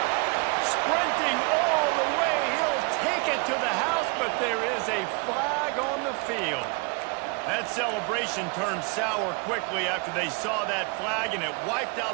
sprinting all the way. He'll take it to the house, but there is a flag on the field. That celebration turned sour quickly after they saw that flag, and it wiped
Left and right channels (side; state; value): left; quieter; 31.2 dB